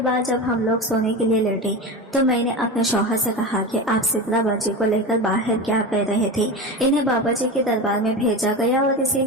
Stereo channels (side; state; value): both; normal; correlation 0.24